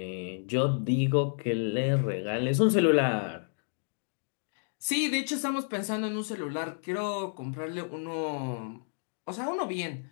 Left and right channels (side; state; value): right; silent; digital silence